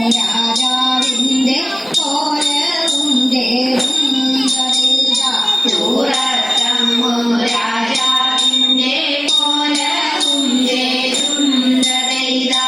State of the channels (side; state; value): both; identical; correlation 1.00